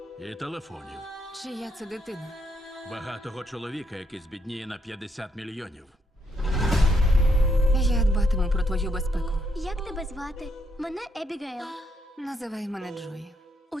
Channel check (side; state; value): both; normal; correlation 0.75